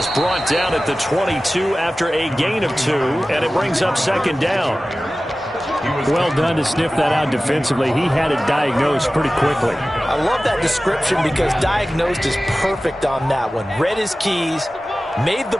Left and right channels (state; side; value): normal; both; correlation 0.96